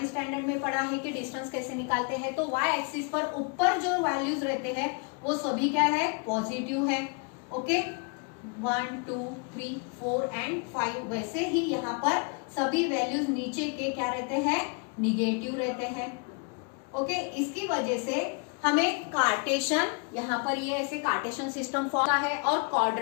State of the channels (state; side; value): quieter; right; 35.1 dB